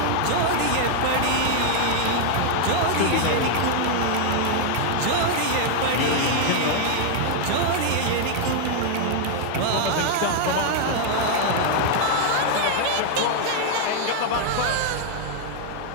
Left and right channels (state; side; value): different; both; correlation 0.00